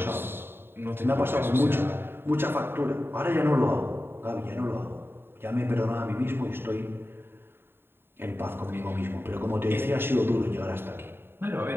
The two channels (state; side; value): late; left; 0.11 ms